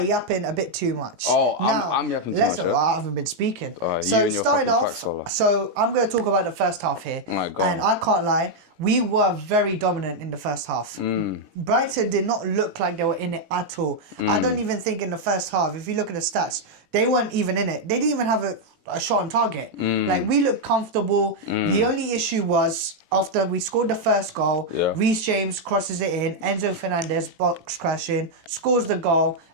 yapping a bit too much. Oh, I'm yapping too much. I haven't been speaking. So starting off, so I'm going to talk about the first half here. Oh my God. And I can't lie, we were very dominant in the first half. Brighton did not look like they were in it at all. I don't even think in the first half, if you look at the stats, they weren't even in it. They didn't even have a shot on target. Like, we looked comfortable. The only issue was after we scored the first goal, Reece James crosses it in, Enzo Fernandez box crashing, scores the goal,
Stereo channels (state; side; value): late; left; 18 ms